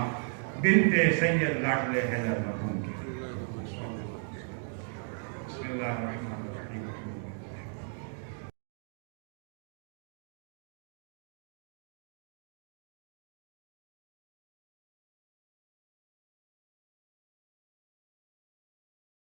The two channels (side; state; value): left; silent; 53 dB below the other